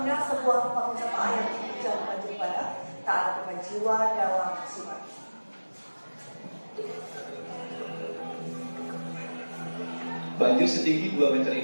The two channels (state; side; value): inverted; both; correlation -1.00